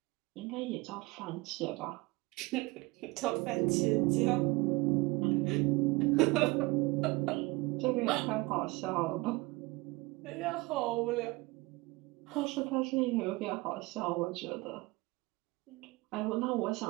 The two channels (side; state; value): left; quieter; 23.0 dB